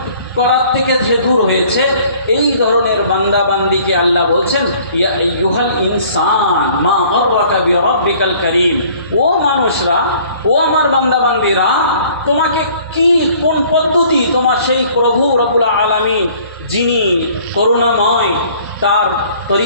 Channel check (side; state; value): both; inverted; correlation -0.55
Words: করার থেকে যে দূর হয়েছে, এই ধরনের বান্দা বান্দিকে আল্লাহ বলছেন ইয়া আইয়ুহাল ইনসান মা গাররাকা বিরাব্বিকাল কারীম। ও মানুষরা, ও আমার বান্দা বান্দিরা, তোমাকে কোন পদ্ধতি তোমার সেই প্রভু রব্বুল আলামিন যিনি করুণাময় তার